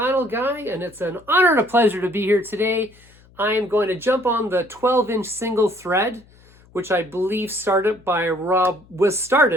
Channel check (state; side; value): noise; left; hum, 28 dB below the sound